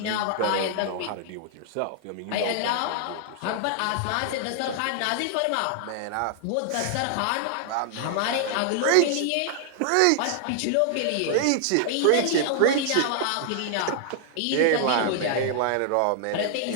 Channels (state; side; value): different; both; correlation 0.00